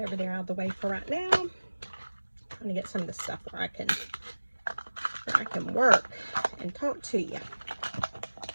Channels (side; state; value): both; inverted; correlation -1.00